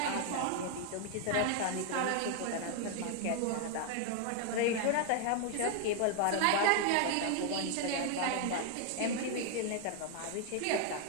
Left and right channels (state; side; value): different; both; correlation 0.00